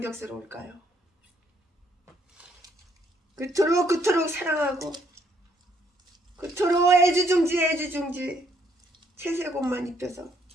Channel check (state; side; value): normal; both; correlation 0.69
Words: 그토록 사랑하고 그토록 애지중지 채색옷만 입혀서